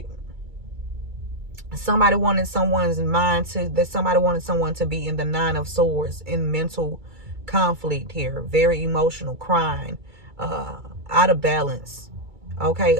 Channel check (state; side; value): late; left; 2.3 ms